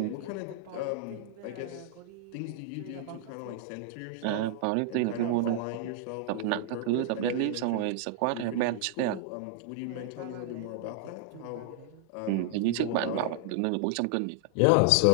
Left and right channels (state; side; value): different; both; correlation 0.00